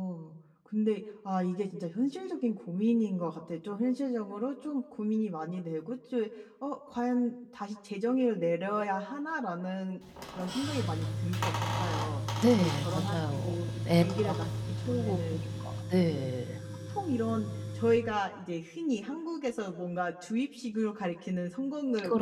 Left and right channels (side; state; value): both; identical; correlation 1.00